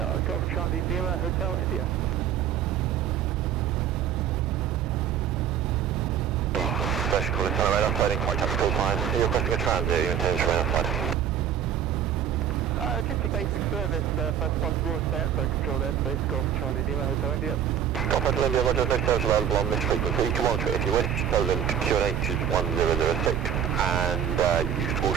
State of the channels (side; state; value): left; quieter; 9.2 dB